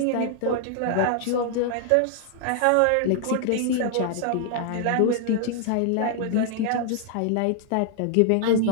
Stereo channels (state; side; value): different; both; correlation 0.00